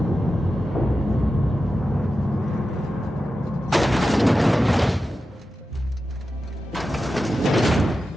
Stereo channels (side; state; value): both; normal; correlation 0.92